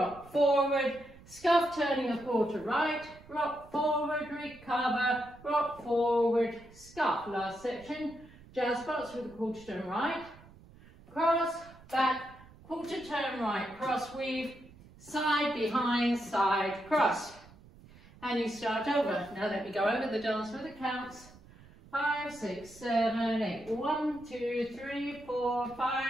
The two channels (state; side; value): noise; right; rumble, 22 dB below the sound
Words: forward, scuff turning a quarter right, rock forward, recover, rock forward, scuff. Last section, jazz box with a quarter turn right, cross, back, quarter turn right, cross weave, side, behind, side, cross. And you start over. Now let me go over the dance with the counts. 5, 6, 7, 8. 1, 2, 3, 4,